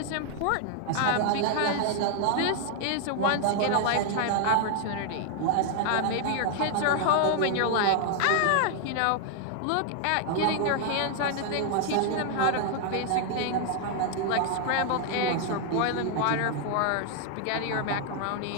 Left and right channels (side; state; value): both; different; correlation 0.00